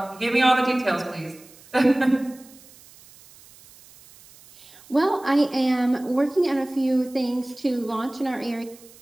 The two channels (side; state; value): right; noise; hiss, 24 dB below the sound